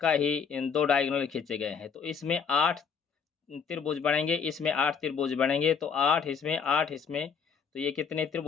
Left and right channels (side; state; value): right; quieter; 6.3 dB